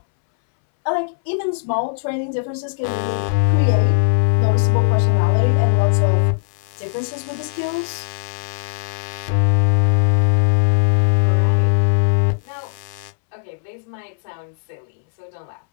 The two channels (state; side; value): silent; right; 67 dB below the other